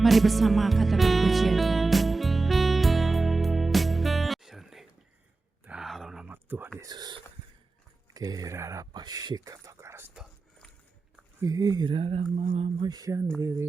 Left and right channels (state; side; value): quieter; left; 3.7 dB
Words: Mari bersama katakan pujian. Dalam nama Tuhan Yesus. Kirara pasika takarasta. Kirara mama